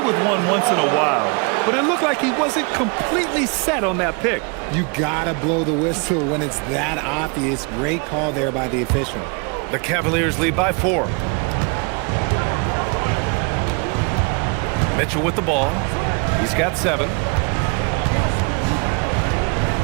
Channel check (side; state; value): left; quieter; 32.9 dB